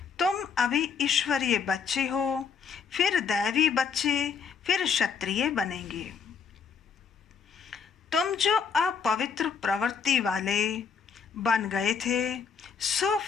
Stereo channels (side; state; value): right; quieter; 6.2 dB